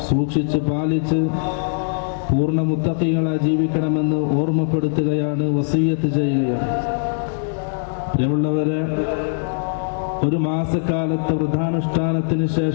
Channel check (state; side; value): silent; right; digital silence